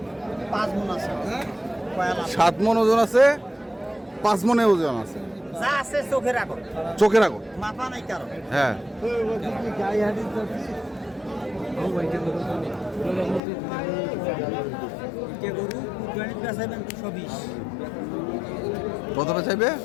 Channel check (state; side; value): drops out; right; at 13.4 s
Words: 5 মণ আছে 7 মণ ওজন আছে 5 মণে ওজন আছে যা আছে চোখে রাখো চোখে রাখো মাথা নাই কারো হ্যাঁ কে গরু কুরবানির বেচাবেন 220 কত চাইবে